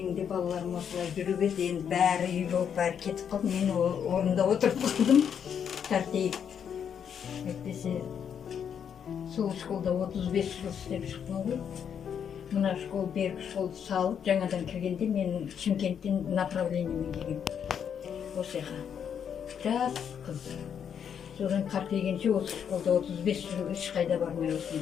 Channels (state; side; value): quieter; right; 8.0 dB